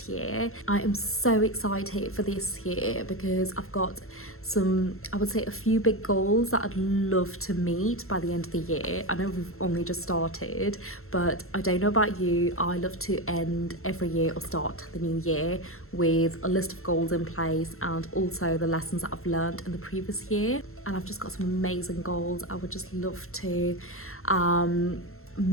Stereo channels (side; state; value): right; late; 0.62 ms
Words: year. I am so excited for this year because I've got I would say a few big goals that I'd love to meet by the end of the year. I know we've only just started, but I don't know about you, I love to end every year or start the new year with a list of goals in place and also the lessons that I've learned in the previous year. And I've just got some amazing goals I would just love to